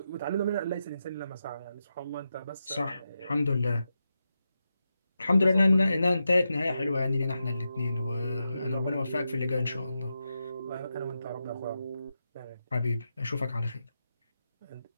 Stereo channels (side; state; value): both; inverted; correlation -0.88